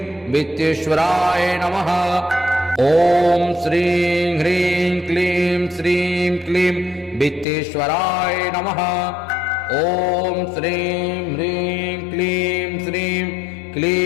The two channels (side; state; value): right; drops out; at 7.5 s